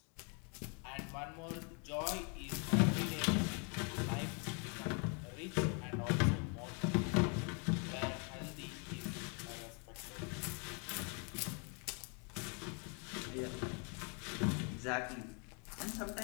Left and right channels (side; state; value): right; quieter; 36.0 dB